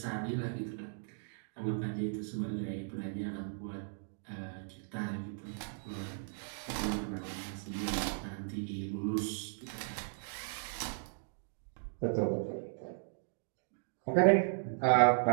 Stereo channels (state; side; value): silent; left; digital silence